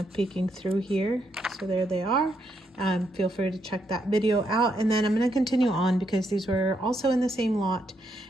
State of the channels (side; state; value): both; normal; correlation 0.78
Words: peeking through here. So there they are. Feel free to check that video out. And then I'm going to continue on because these were also in the same lot.